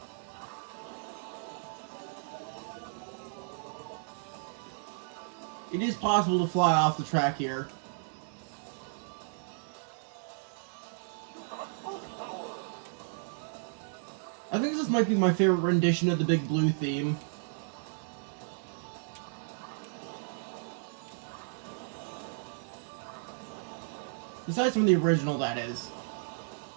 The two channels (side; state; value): left; silent; digital silence